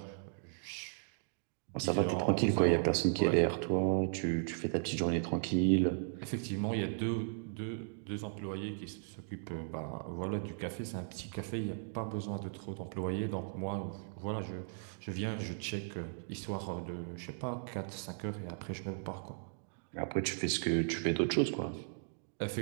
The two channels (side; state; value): left; silent; digital silence